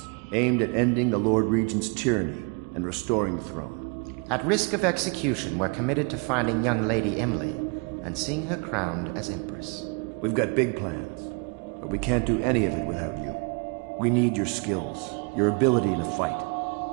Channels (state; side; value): quieter; left; 33.6 dB